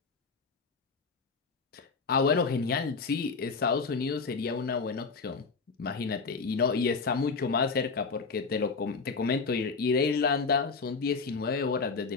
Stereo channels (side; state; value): right; quieter; 4.7 dB